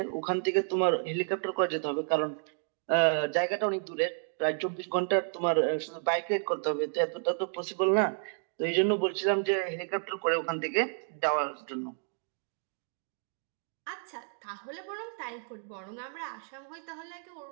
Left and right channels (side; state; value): left; silent; 57 dB below the other